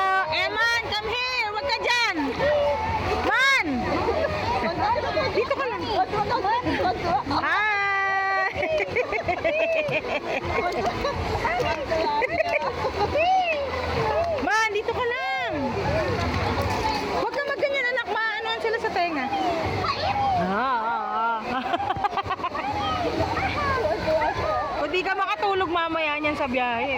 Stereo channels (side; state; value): both; identical; correlation 1.00